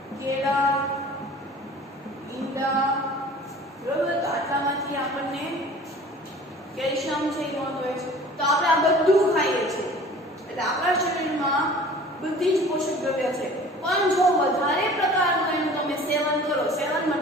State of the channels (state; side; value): normal; both; correlation 0.45